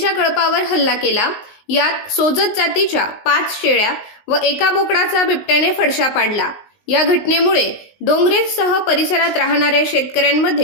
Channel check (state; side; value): late; right; 19 ms